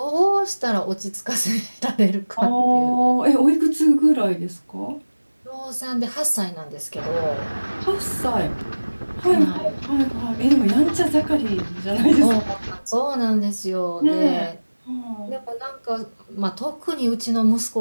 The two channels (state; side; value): inverted; both; correlation -1.00